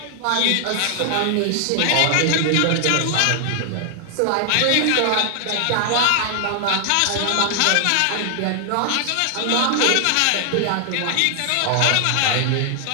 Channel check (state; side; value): different; both; correlation 0.00